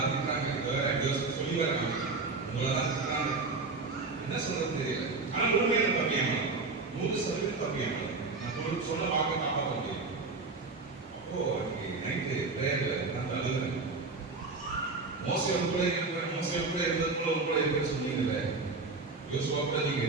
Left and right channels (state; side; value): quieter; left; 3.8 dB